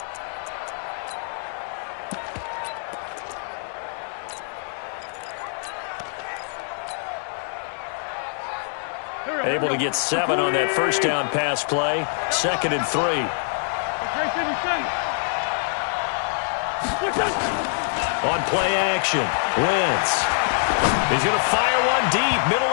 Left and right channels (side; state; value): right; silent; 62 dB below the other